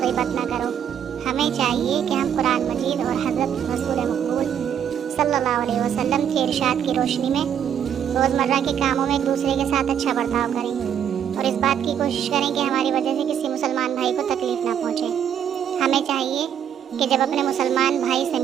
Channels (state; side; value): quieter; left; 9.0 dB